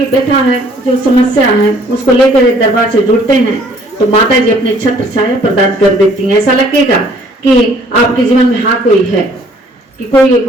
व्यथा है, जो समस्या है, उसको लेकर दरबार से जुड़ते हैं तो माता जी अपने छत्र छाया प्रदान कर देती हैं। ऐसा लगेगा कि आपके जीवन में हाँ कोई है, कि कोई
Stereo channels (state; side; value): normal; both; correlation 0.59